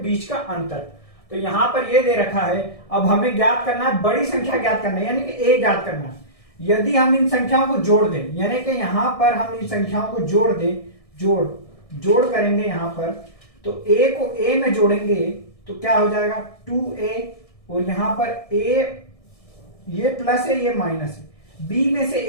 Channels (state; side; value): late; right; 1.6 ms